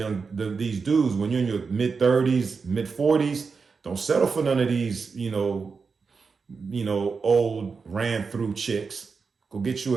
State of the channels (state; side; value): quieter; left; 5.0 dB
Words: dudes, when you're in your mid 30s, mid 40s, don't settle for none of these, old ran through chicks. Go get you